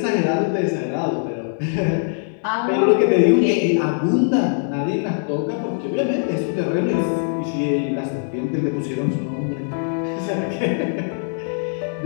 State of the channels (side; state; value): right; silent; digital silence